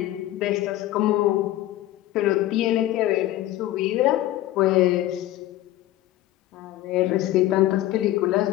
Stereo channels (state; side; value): quieter; right; 14.9 dB